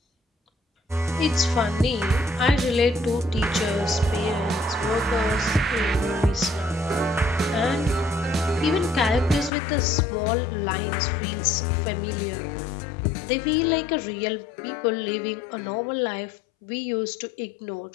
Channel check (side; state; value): right; drops out; at 9.5 s